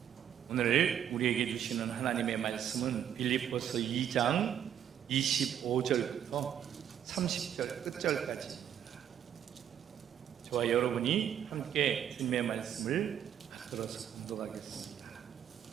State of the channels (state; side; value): quieter; left; 9.6 dB